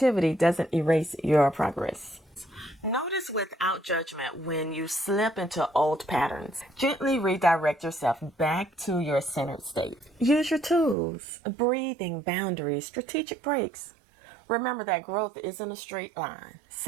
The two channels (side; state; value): left; drops out; at 11.0 s